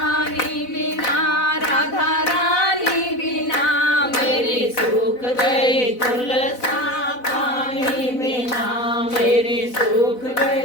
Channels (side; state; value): right; late; 4.0 ms